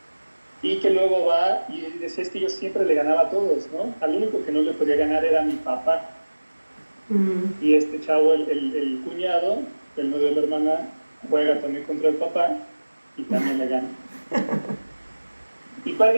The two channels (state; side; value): inverted; both; correlation -1.00